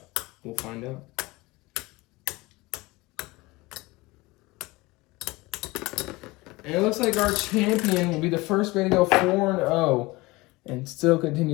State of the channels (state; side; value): quieter; right; 22.1 dB